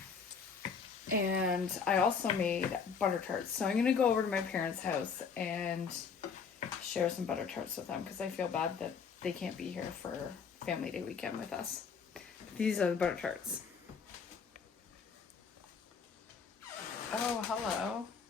And I also made butter tarts. So I'm gonna go over to my parents' house and share some butter tarts with them because I feel bad that they can't be here for Family Day weekend with us. These are the butter tarts. Oh, hello.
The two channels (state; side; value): quieter; right; 6.0 dB